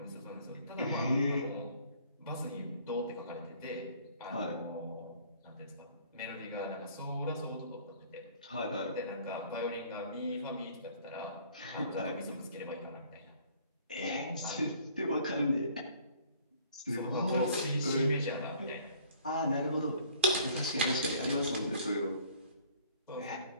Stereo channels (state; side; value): inverted; both; correlation -0.56